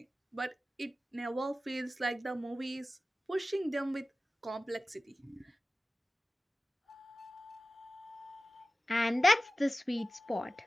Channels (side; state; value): both; normal; correlation 0.95